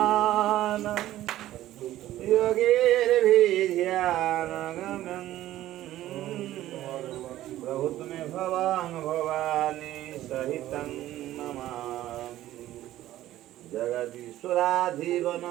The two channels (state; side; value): quieter; left; 14.2 dB